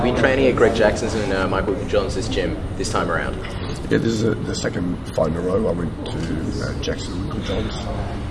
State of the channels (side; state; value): both; identical; correlation 1.00